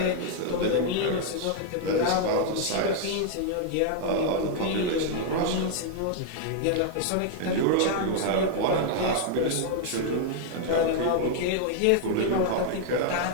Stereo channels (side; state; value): both; different; correlation 0.00